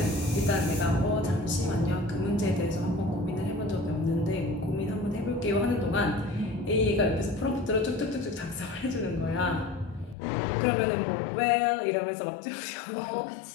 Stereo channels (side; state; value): right; drops out; at 10.2 s